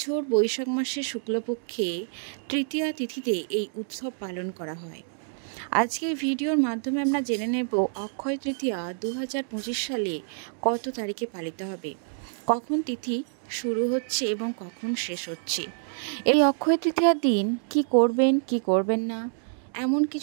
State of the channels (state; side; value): silent; left; digital silence